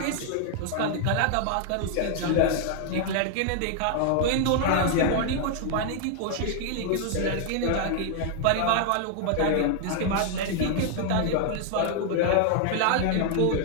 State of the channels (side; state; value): both; different; correlation 0.00